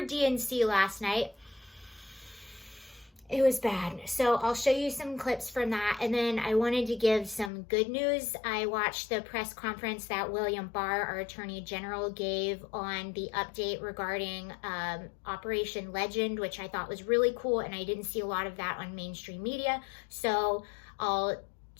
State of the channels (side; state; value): right; drops out; at 7.5 s